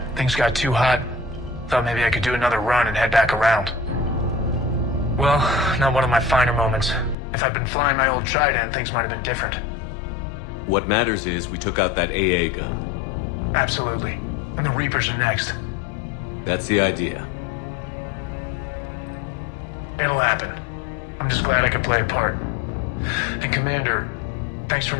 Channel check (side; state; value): right; drops out; at 7.2 s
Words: Things got too hot. Thought maybe I could do another run and head back around. Well, not one of my finer moments. If I'd been flying my old Trident, things might have been different. What matters is we took out that AA gun. Absolutely. And the Reapers are next. That's the idea. It'll happen. I'm just glad I could play a part. And Commander, thanks for